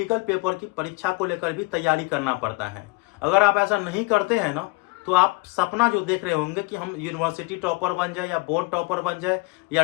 पेपर की परीक्षा को लेकर भी तैयारी करना पड़ता है। अगर आप ऐसा नहीं करते हैं ना, तो आप सपना जो देख रहे होंगे कि हम यूनिवर्सिटी टॉपर बन जाए या बोर्ड टॉपर बन जाए या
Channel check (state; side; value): quieter; right; 25.5 dB